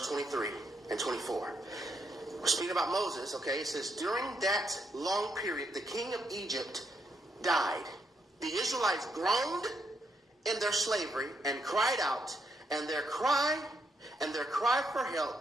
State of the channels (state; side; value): normal; both; correlation 0.77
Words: 23 and 24. We're speaking about Moses, okay? It says, during that long period, the king of Egypt died. The Israelites groaned in their slavery and cried out, and their cry for